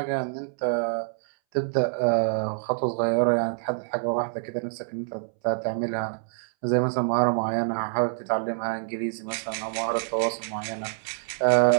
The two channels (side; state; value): left; silent; 61 dB below the other